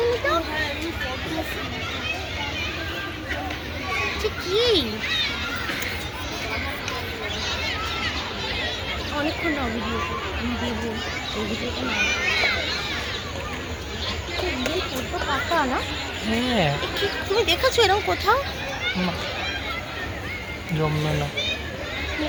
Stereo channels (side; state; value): both; identical; correlation 1.00